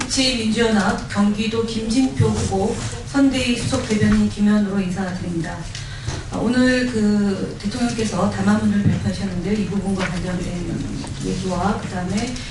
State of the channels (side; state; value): both; identical; correlation 1.00